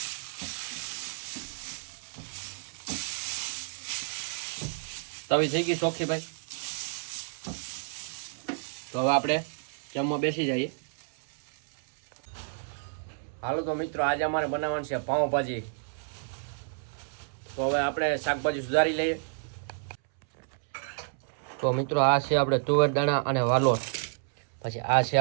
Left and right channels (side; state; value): left; silent; 58 dB below the other